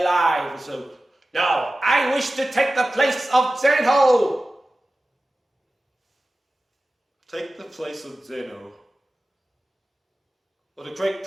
So, no, I wish to take the place of Zeno. Take the place of Zeno. Or the Great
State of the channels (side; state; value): both; normal; correlation 0.95